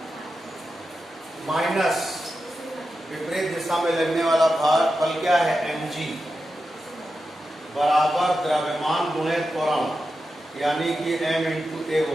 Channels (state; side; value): normal; both; correlation 0.90